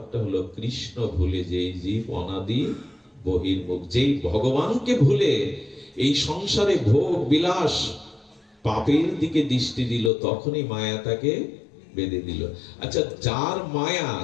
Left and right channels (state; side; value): drops out; right; at 10.1 s